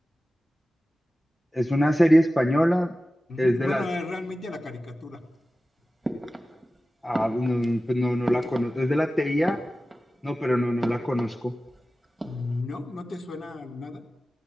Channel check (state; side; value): normal; both; correlation 0.95